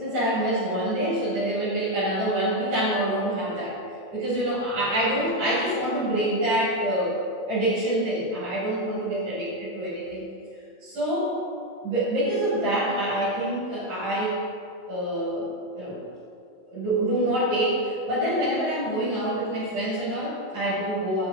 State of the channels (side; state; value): left; late; 27 ms